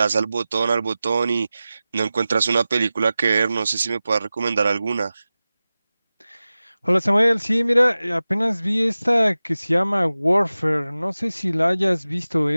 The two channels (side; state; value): both; inverted; correlation -0.96